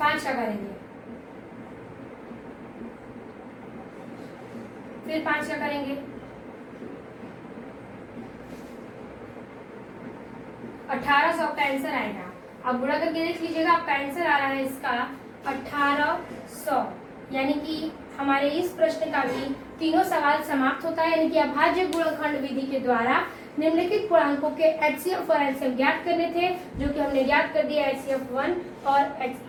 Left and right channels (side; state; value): both; identical; correlation 1.00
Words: का करेंगे, फिर 5 का करेंगे, 1800 आपका आंसर आएगा। अब गुणा करके देख लीजिएगा, आपका आंसर आ रहा है इसका 1800, यानी कि हमारे इस प्रश्न का भी तीनों सवाल समाप्त होता है, यानी कि अभाज्य गुणनखंड विधि के द्वारा निम्नलिखित पूर्णांकों के HCF और LCM ज्ञात करने थे, जो कि हमने ज्ञात कर दिया HCF 1 और